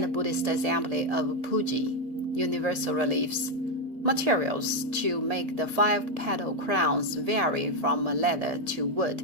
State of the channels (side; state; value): left; late; 1.8 ms